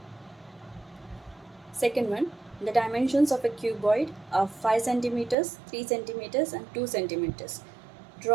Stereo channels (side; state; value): left; drops out; at 5.4 s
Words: Second one, the dimensions of a cuboid are 5 centimeters, 3 centimeters and 2 centimeters.